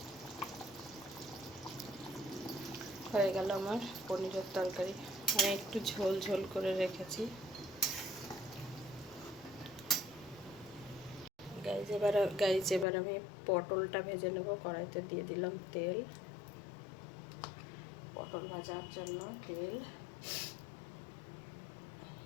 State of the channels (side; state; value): right; drops out; at 12.9 s